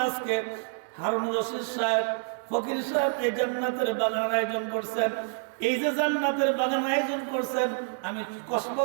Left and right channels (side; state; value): left; silent; 57 dB below the other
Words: আজকে হারুনুর রশিদ সাহেব, ফকির সাহেব এই জান্নাতের বাগান আয়োজন করছেন। এই যে জান্নাতের বাগান আয়োজন করছেন, আমি কসবা